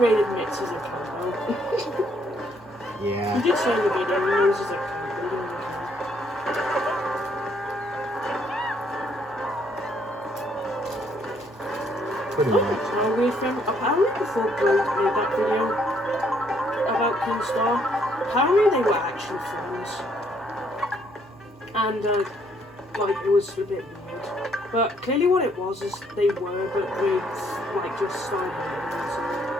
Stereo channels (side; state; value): both; normal; correlation 0.68